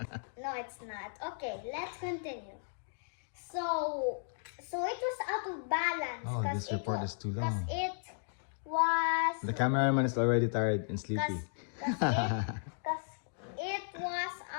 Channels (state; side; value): silent; right; digital silence